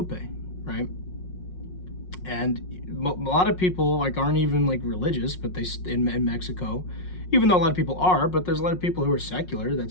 right? And a lot of people like aren't even like religious, but they in Mexico, even though a lot of people are, but there's a lot of people who are secular that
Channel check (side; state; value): right; late; 5.5 ms